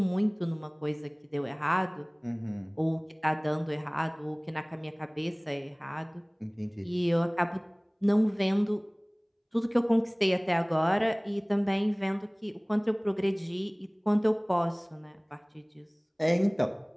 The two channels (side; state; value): both; identical; correlation 1.00